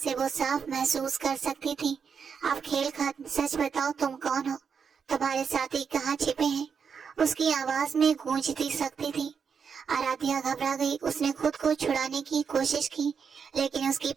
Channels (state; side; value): quieter; left; 6.4 dB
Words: वो साफ महसूस कर सकती थी। अब खेल खत्म, सच बताओ तुम कौन हो? तुम्हारे साथी कहाँ छिपे हैं? उसकी आवाज में गूंजती शक्ति थी। आराध्या घबरा गई। उसने खुद को छुड़ाने की कोशिश की, लेकिन उसकी